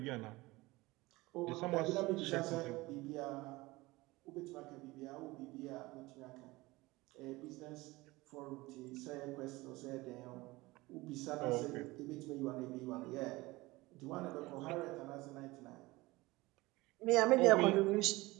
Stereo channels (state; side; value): quieter; left; 20.9 dB